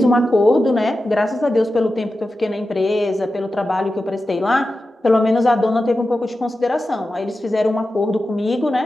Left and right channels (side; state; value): both; normal; correlation 0.92